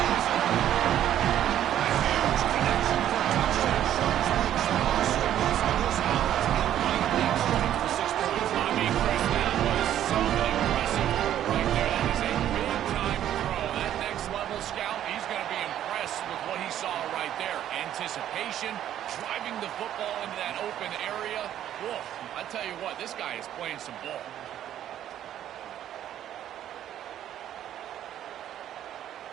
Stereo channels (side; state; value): left; quieter; 11.3 dB